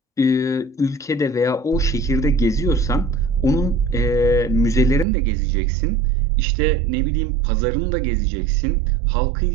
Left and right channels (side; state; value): left; drops out; at 5.1 s